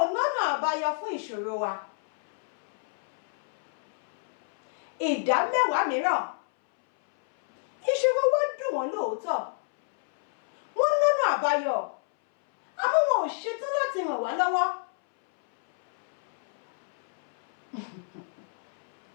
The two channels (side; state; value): right; silent; 60 dB below the other